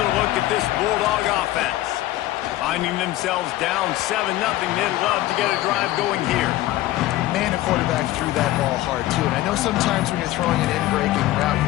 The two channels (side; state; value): right; quieter; 15.7 dB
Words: look at this Bulldog offense. Finding themselves down 7-0, they'd love to get a drive going here. Man, a quarterback threw that ball hard, too. And I know sometimes when you're throwing an in-breaking route, you